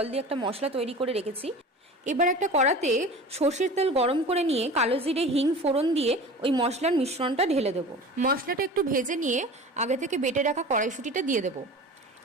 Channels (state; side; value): normal; both; correlation 0.37